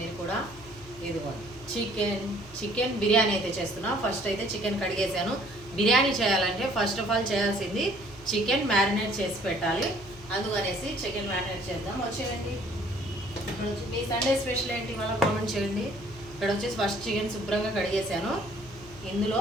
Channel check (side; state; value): left; noise; hum, 19 dB below the sound